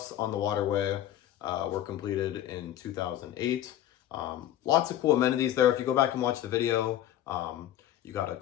on the Waterway were completed in 2008. Lots of cool amenities there. If you go back and watch the video, you got a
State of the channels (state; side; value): quieter; right; 12.3 dB